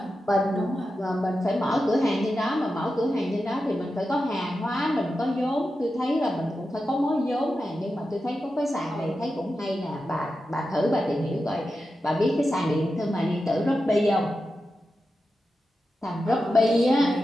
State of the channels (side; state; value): both; normal; correlation 0.90